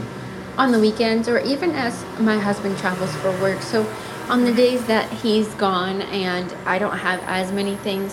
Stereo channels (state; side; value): identical; both; correlation 1.00